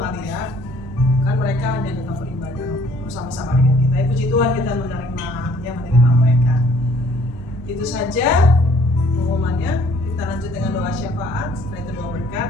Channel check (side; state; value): both; normal; correlation 0.59